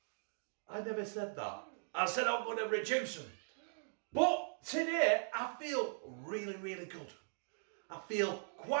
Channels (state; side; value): silent; left; digital silence